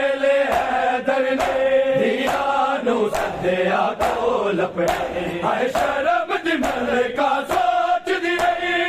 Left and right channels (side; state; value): both; identical; correlation 1.00